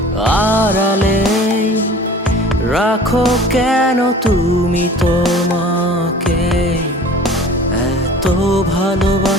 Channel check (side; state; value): both; normal; correlation 0.44